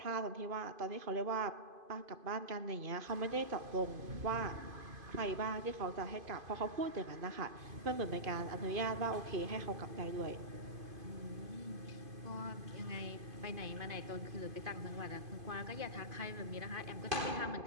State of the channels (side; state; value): left; late; 2.5 ms